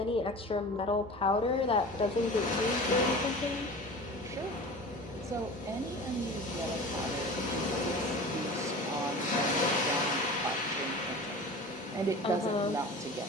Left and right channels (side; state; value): both; normal; correlation 0.36